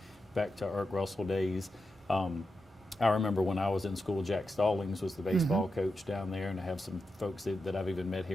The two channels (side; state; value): both; normal; correlation 0.89